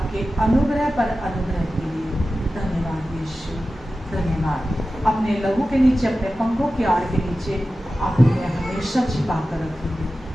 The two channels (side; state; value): both; normal; correlation 0.94